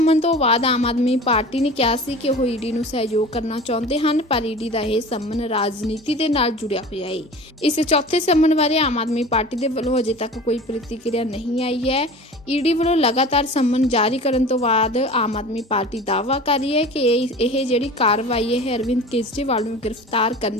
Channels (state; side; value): normal; both; correlation 0.38